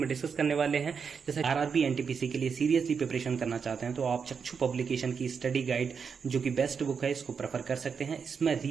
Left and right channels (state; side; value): quieter; left; 6.1 dB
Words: डिस्कस करने वाले हैं। जैसे आरआरबी एनटीपीसी के लिए सीरियसली प्रिपरेशन करना चाहते हैं तो आप चक्षु पब्लिकेशन की स्टडी गाइड, जो कि बेस्ट बुक है, इसको प्रेफर कर सकते हैं। इसमें